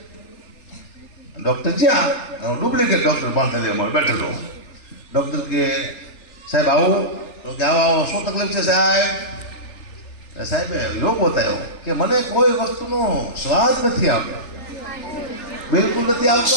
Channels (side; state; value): right; late; 3.4 ms